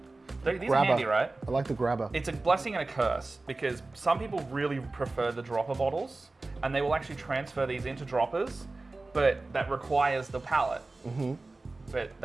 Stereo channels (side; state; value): left; quieter; 3.3 dB